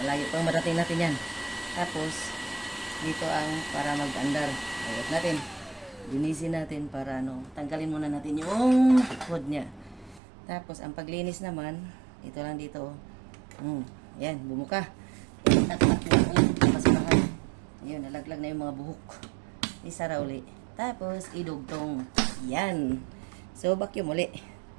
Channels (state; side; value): drops out; left; at 10.2 s